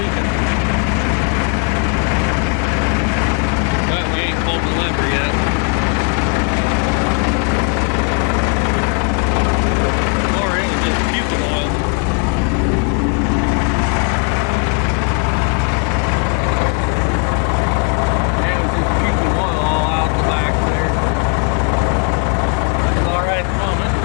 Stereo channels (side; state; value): right; quieter; 34.3 dB